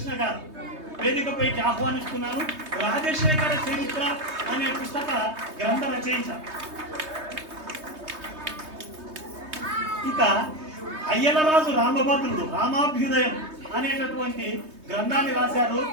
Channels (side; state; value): left; late; 3.2 ms